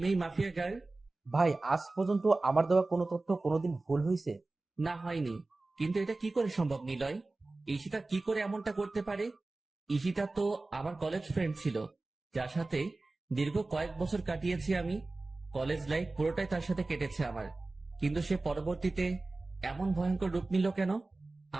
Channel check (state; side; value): quieter; left; 3.2 dB